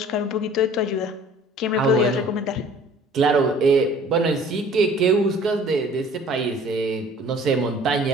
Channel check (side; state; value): both; normal; correlation 0.51